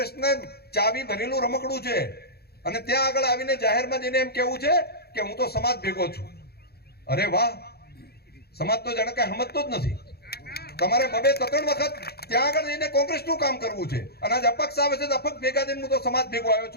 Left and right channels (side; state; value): right; late; 0.46 ms